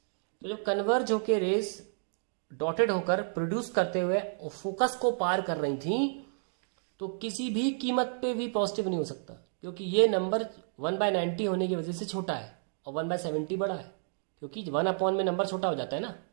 तो जब कन्वर्ज होके रेज डॉटेड होकर प्रोड्यूस करते हुए फोकस को पार कर रही थी, तो किसी भी कीमत पे भी पॉजिटिव नहीं हो सकता, क्योंकि ये नंबर 1/90 होने की वजह से छोटा है और 1/70 बड़ा है, क्योंकि 1/, में नंबर छोटा हो जाता है ना,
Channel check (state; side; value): silent; left; digital silence